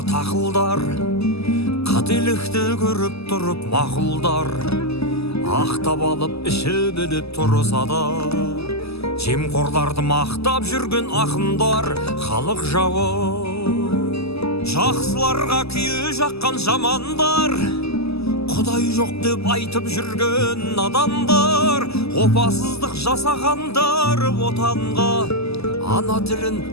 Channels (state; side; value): late; right; 0.79 ms